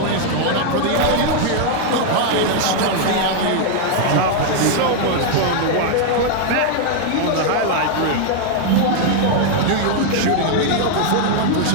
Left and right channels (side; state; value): both; different; correlation 0.00